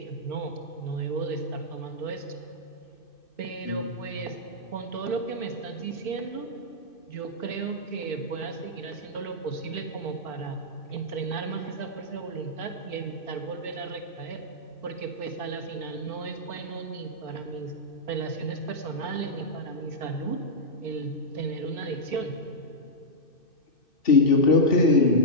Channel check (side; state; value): right; late; 2.6 ms